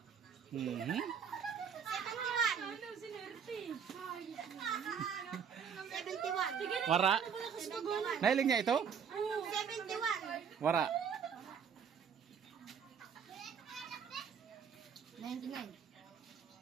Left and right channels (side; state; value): left; quieter; 7.2 dB